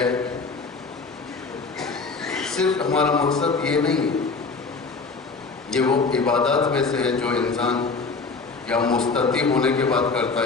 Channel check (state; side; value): quieter; right; 4.3 dB